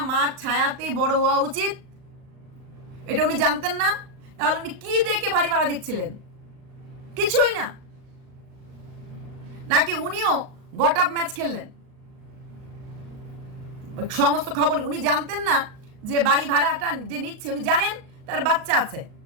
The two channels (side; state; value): left; late; 38 ms